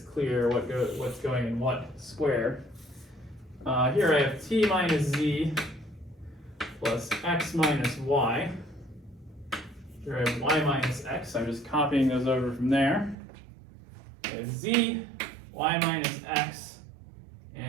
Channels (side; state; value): left; drops out; at 13.2 s